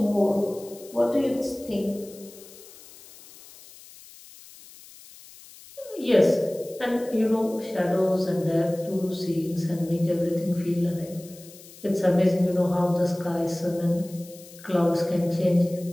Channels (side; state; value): left; noise; hiss, 20 dB below the sound